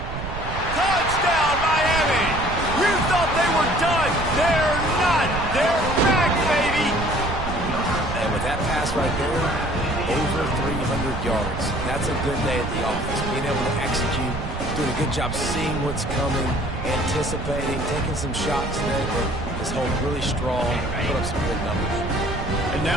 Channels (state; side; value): noise; right; rumble, 6 dB below the sound